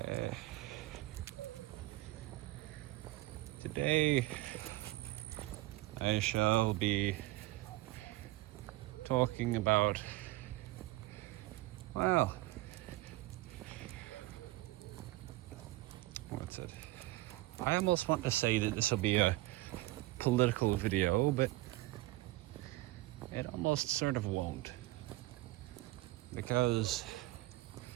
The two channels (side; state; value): left; quieter; 18.9 dB